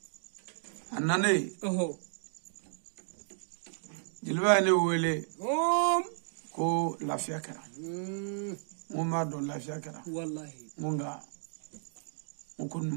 anane jilba ne wele ko lafiya kara mo ma do lafiya kara wallahi munga mukun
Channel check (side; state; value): left; silent; digital silence